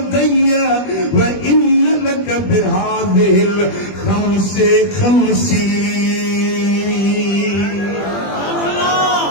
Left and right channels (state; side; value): late; right; 21 ms